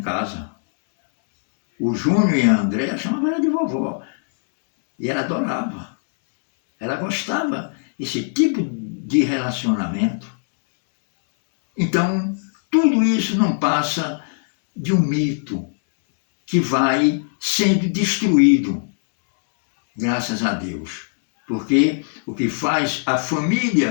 casa. O Júnior e a Andréa chamavam ela de vovó. E ela adorava. Ela gostava desse tipo de relacionamento. Então, tudo isso não passa de um mito que vai sendo destruído, graças a Deus. Porque o que faz a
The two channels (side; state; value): right; silent; 64 dB below the other